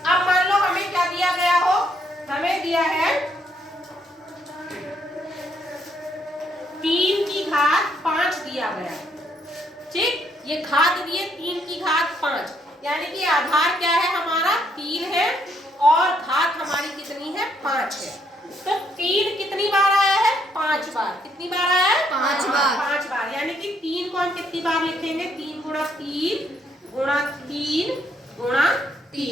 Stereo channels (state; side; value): normal; both; correlation 0.72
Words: अब मान लो हमें क्या दिया गया हो, हमें दिया है 3 की घात 5 दिया गया। ठीक, ये घात दिए 3 की घात 5, यानी कि आधार क्या है हमारा, 3 है, और घात हमारी कितनी है, 5 है। तो 3 कितनी बार आया है, 5 बार। कितनी बार आया है, 5 बार। 5 बार, यानी कि 3 को हम कितनी बार लिखेंगे, 3 गुणा 3 गुणा 3 गुणा